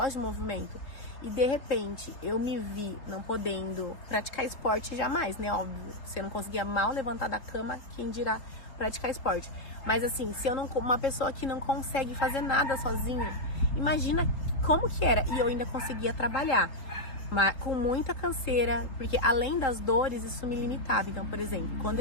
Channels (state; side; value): late; right; 3.7 ms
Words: de movimento. E de repente, eu me vi não podendo praticar esporte jamais, né? Óbvio, você não conseguia mal levantar da cama, quem dirá praticar esporte. Mas assim, se eu não, uma pessoa que não consegue fazer nada sozinha, imagina como que era. E eu ainda conseguia trabalhar, mas com muita canseira, porque além das dores, isso me limitava. Então, por exemplo, quando